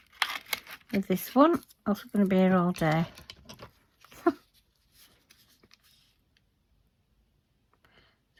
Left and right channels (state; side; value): identical; both; correlation 1.00